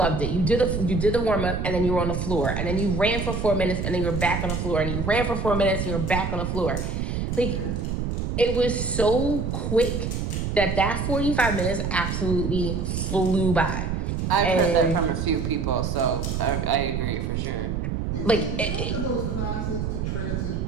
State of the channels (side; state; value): right; noise; rumble, 2 dB below the sound